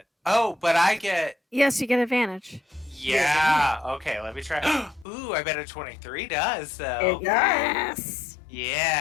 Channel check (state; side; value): drops out; right; at 5.1 s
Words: Oh, but I get... Yes, you get advantage. Yeah. Okay, let me try. Ooh, I bet a 23 does, though. It does. Yes.